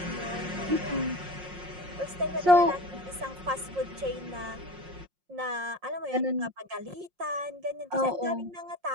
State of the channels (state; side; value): late; left; 5.6 ms